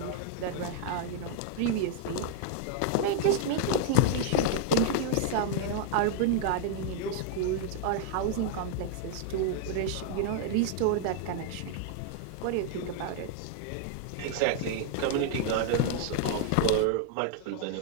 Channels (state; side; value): different; both; correlation -0.01